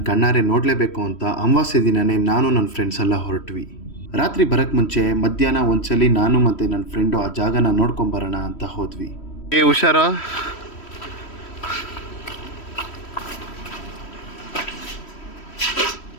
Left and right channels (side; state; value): right; late; 3.1 ms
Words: ಕಣ್ಣಾರೆ ನೋಡಲೇಬೇಕು ಅಂತ ಅಮಾವಾಸ್ಯೆ ದಿನವೇ ನಾನು ನನ್ನ ಫ್ರೆಂಡ್ಸ್ ಎಲ್ಲ ಹೊರಟ್ವಿ. ರಾತ್ರಿ ಬರೋಕ್ಕೆ ಮುಂಚೆ ಮಧ್ಯಾಹ್ನ ಒಂದ್ಸಲಿ ನಾನು ಮತ್ತು ನನ್ನ ಫ್ರೆಂಡು ಆ ಜಾಗನ ನೋಡ್ಕೊಂಬರೋಣ ಅಂತ ಹೋದ್ವಿ. ಹುಷಾರು.